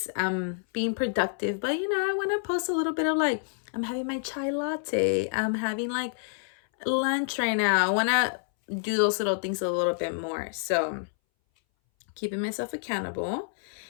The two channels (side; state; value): right; silent; 59 dB below the other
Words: I'm being productive, but you know, I want to post a little bit of like, I'm having my chai latte. I'm having like lunch right now. I want to do those little things a little bit more. So, keeping myself accountable.